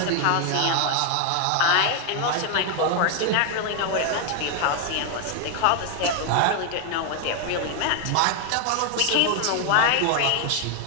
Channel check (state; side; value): different; both; correlation 0.01